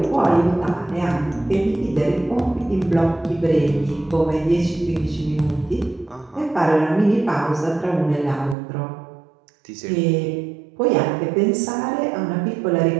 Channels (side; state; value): left; drops out; at 8.6 s